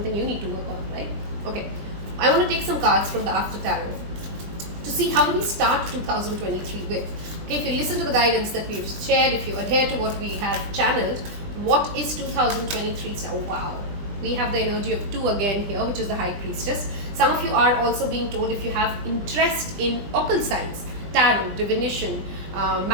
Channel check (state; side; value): late; left; 20 ms